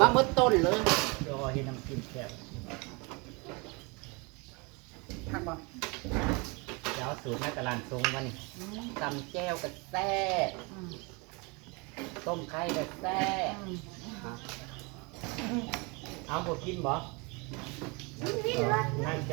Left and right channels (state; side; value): quieter; left; 29.2 dB